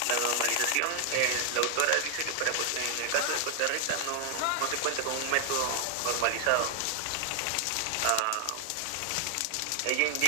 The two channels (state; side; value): different; both; correlation 0.00